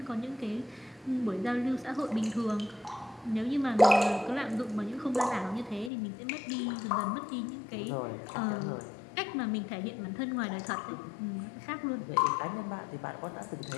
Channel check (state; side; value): drops out; right; at 5.9 s